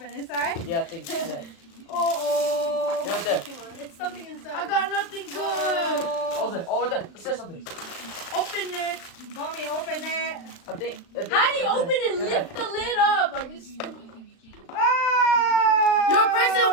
inside. Yeah, I think. Yeah. Oh. Right there. It's something inside. I got nothing good. Oh, there. Oh, right there. It says something. Open it. Mommy, open it. I think. How do you open it? Lift the lid up. Are you stupid? Oh. Your person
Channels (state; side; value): late; right; 36 ms